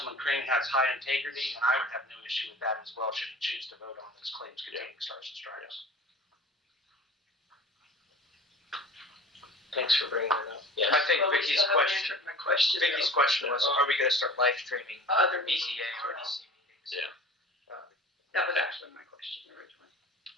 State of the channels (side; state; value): both; normal; correlation 0.41